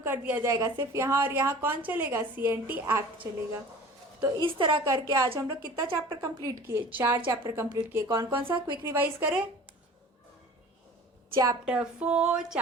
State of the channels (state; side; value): normal; both; correlation 0.42